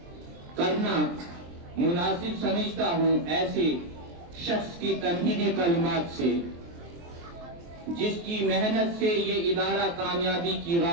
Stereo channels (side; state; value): left; late; 23 ms